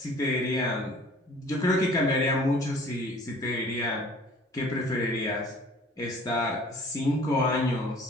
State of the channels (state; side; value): normal; both; correlation 0.51